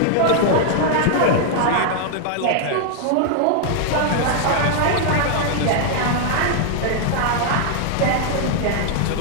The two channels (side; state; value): both; different; correlation 0.00